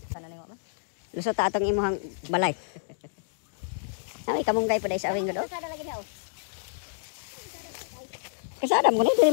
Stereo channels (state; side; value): silent; right; digital silence